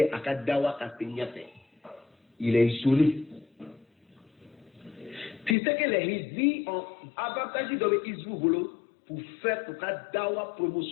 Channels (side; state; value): right; drops out; at 5.6 s